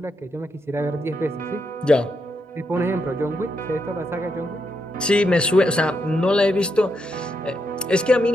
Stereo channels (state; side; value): normal; both; correlation 0.81